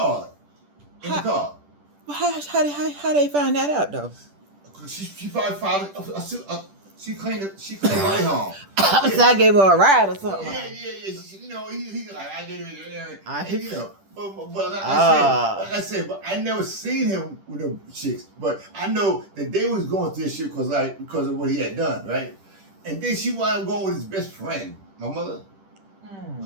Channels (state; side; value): late; left; 10 ms